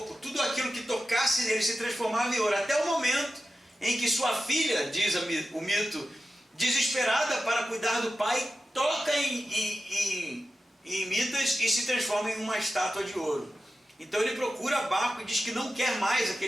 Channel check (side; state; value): both; normal; correlation 0.93